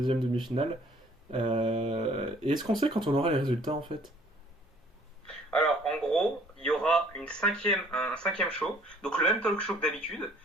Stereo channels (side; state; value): both; normal; correlation 0.57